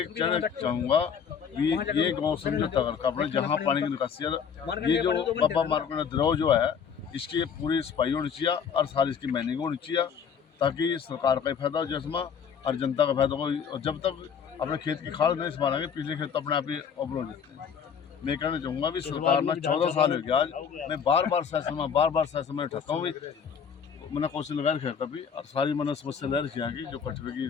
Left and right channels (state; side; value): quieter; right; 7.0 dB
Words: कहना चाहूँगा कि ये गाँव समझौता करके अपने जहाँ पानी की निकासी है, ये जो बाबा मार्केट द्रोह जो है इसकी पूरी सफाई होनी चाहिए और सारी इसकी मैनिंग होनी चाहिए, ताकि सरकार का ही फायदा हो जिसमें और जनता का फायदा हो। और जब तक अपने खेत की खाद नहीं संभालेंगे, पिछले खेत तो अपने आप ही अवरोध हो जाते हैं। मैं कहना चाहूँगा भी सरकार में 14 साल हो गया आज, मैं बार बार सेशन में उठाता हूँ, मैंने कोशिश लगा रखी है कभी, और सारी मैंने समस्या ले रखी है कि जो कचरे की